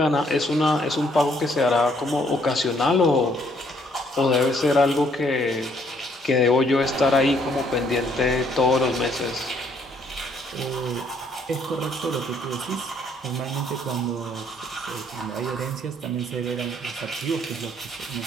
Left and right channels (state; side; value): normal; both; correlation 0.67